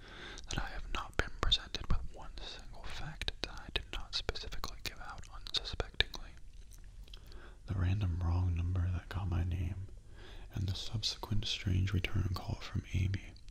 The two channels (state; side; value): identical; both; correlation 1.00